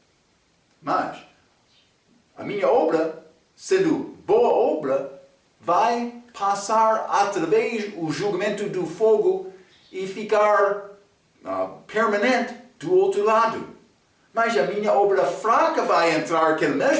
Mas a minha obra, sendo boa obra, vai passar através do julgamento do fogo e ficar permanente do outro lado. Mas a minha obra fraca vai entrar naquele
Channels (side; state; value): both; identical; correlation 1.00